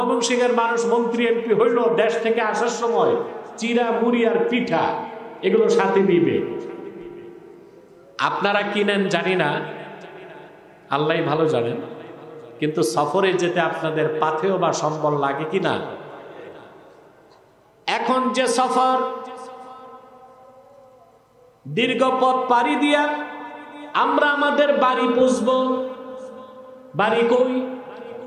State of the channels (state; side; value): identical; both; correlation 1.00